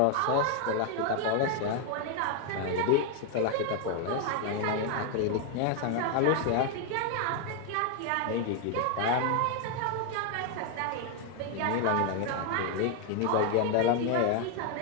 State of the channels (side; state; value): both; different; correlation 0.01